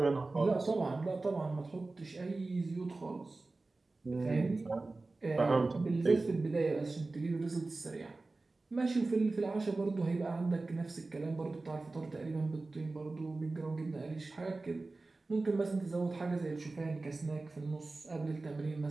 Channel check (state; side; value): quieter; left; 3.4 dB